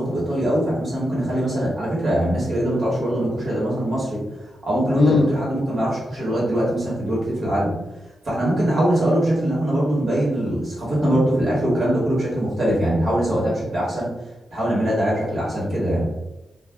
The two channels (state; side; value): normal; both; correlation 0.86